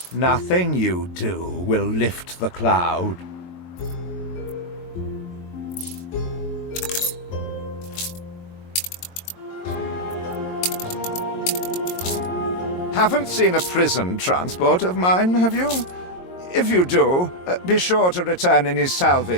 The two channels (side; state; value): right; late; 22 ms